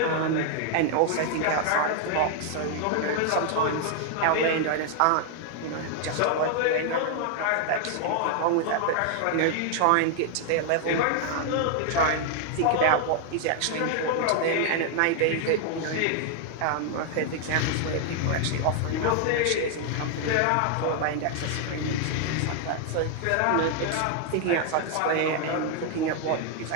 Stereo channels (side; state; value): both; different; correlation 0.00